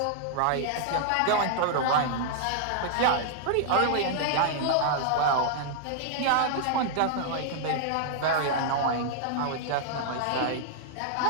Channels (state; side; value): different; both; correlation -0.01